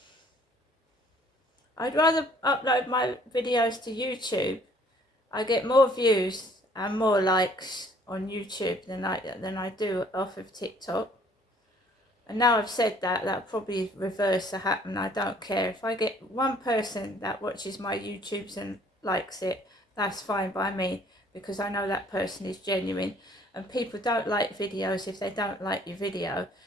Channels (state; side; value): normal; both; correlation 0.58